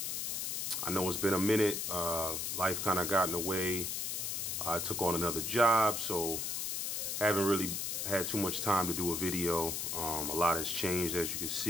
I know it's been a minute. Life kind of got in the way. I took on another job, so haven't really had too much time to do a video. A lot has changed, as you can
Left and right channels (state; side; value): noise; left; hiss, 2 dB below the sound